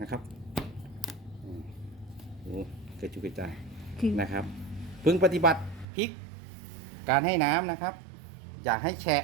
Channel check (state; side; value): drops out; left; at 5.9 s